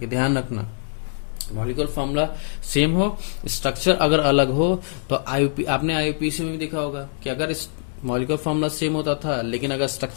ध्यान रखना। मॉलिक्यूलर फार्मूला सेम हो, स्ट्रक्चर अगर अलग हो तो आईयूपी, आपने आईयूपीएसी में भी देखा होगा कि अगर मॉलिक्यूलर फार्मूला सेम होता था लेकिन अगर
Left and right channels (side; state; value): right; silent; digital silence